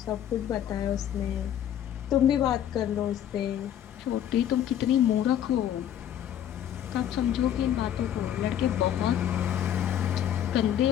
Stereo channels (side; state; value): right; quieter; 10.5 dB